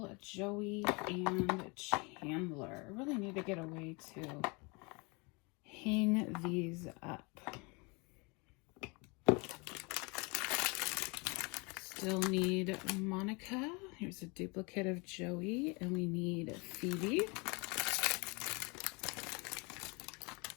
Joey, and Chandler. I really need to get a way to hang these up. Still need Monica. Here's a duplicate of Joey, and we need Phoebe.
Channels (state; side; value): quieter; right; 29.5 dB